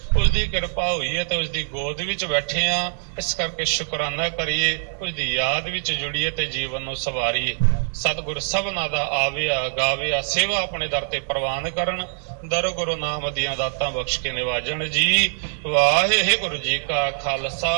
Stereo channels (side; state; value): left; silent; digital silence